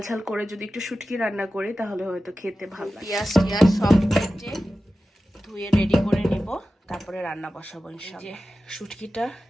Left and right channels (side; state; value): both; normal; correlation 0.94